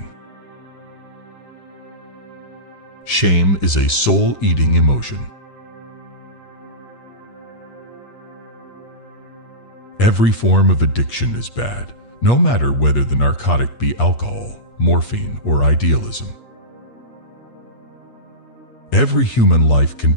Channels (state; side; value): late; right; 8.4 ms